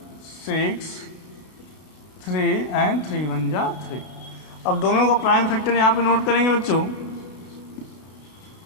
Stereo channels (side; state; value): right; late; 32 ms